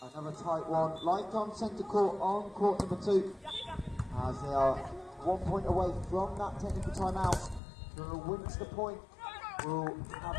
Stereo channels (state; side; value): drops out; right; at 7.6 s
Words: Another tight one, like on centre court on court number 2, as they are 1 point away from that technical timeout. Whoever wins the point will